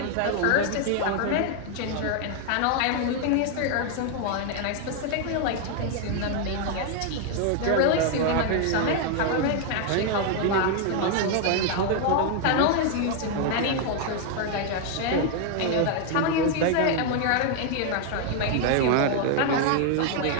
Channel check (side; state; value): both; different; correlation 0.00